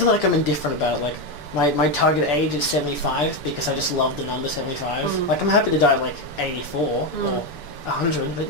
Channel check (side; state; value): right; late; 6.9 ms